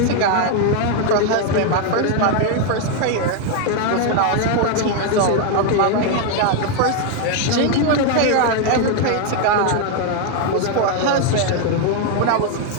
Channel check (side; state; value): both; different; correlation 0.01